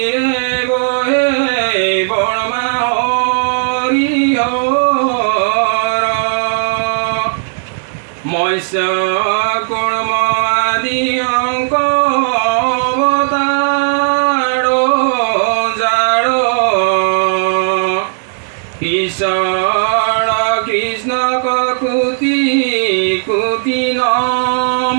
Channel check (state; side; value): silent; left; digital silence